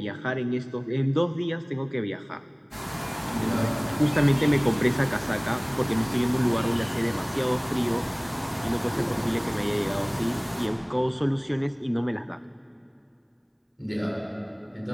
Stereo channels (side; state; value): both; identical; correlation 1.00